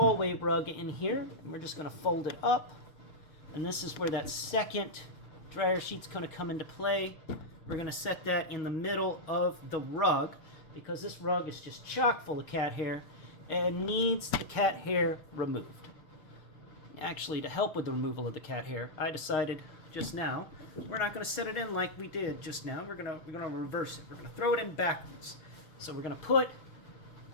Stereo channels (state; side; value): late; right; 6.2 ms